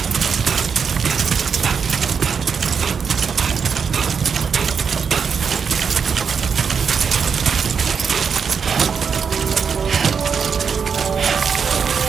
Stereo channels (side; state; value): left; quieter; 6.3 dB